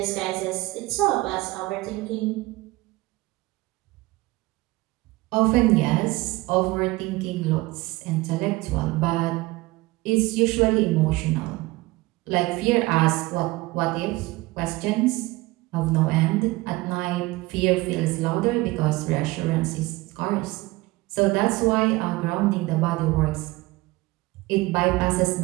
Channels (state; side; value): quieter; left; 20.8 dB